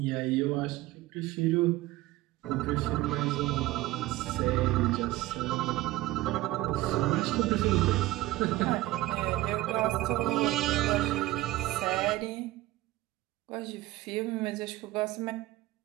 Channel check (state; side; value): quieter; left; 17.4 dB